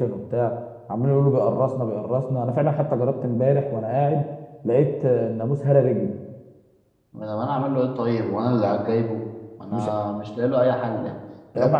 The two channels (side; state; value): both; identical; correlation 1.00